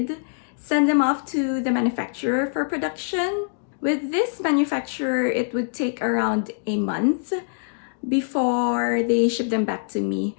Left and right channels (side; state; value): right; silent; digital silence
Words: send them off to the manufacturer for production. With this manufacturer, it would take around a month before they ship them back to me.